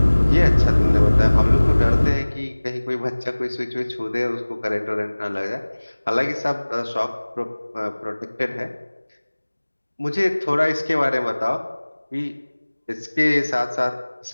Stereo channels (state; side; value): inverted; both; correlation -1.00